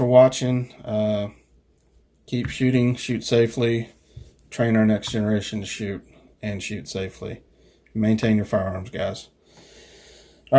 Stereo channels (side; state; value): both; identical; correlation 1.00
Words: watching. Keep shooting, shoot safely, train our next generation to shoot and shoot safely. Maintain your firearms, guys. All